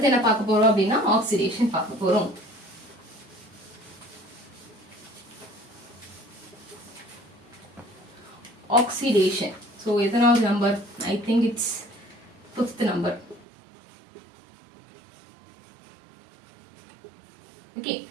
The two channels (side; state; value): left; drops out; at 13.5 s